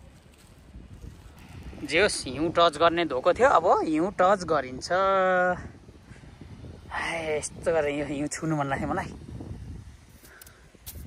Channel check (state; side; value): identical; both; correlation 1.00